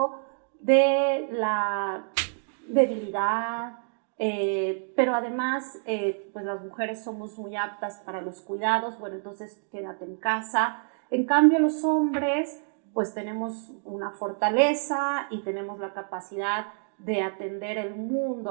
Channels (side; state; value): left; silent; digital silence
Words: de la debilidad, pero además pues las mujeres somos muy aptas para los cuidados, bueno, entonces quédate en casa. En cambio los hombres pues tenemos una fortaleza y tenemos la capacidad de atender el